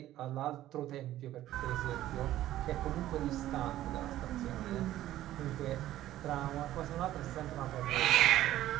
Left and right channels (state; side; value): quieter; left; 13.9 dB